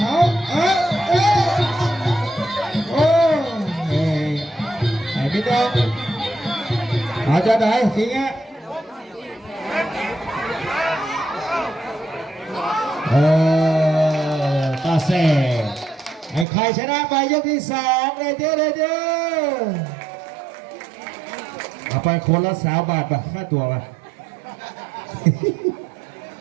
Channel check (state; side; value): drops out; left; at 16.4 s